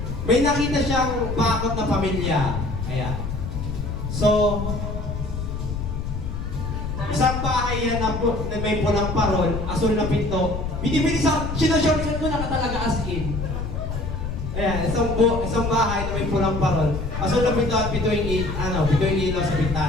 May nakita siyang bakod na pamilya. Ayan. So, isang bahay yan na may pulang parol, asul na pinto. Binibilis ako, sinashortcut ko na talaga as in. Ayan, isang bahay na may pulang parol. Asul na pinto at pito yung ilaw sa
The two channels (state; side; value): noise; left; rumble, 4 dB below the sound